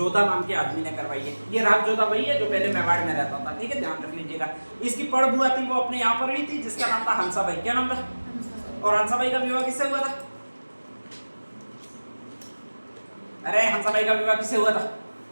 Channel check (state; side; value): inverted; both; correlation -1.00